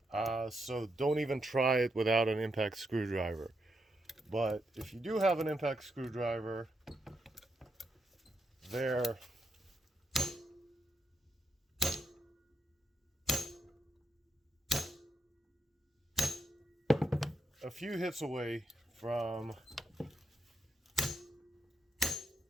so don't even try it without an impact screwdriver. But if you do have an impact screwdriver, they're a few hits away from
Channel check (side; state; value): both; normal; correlation 0.82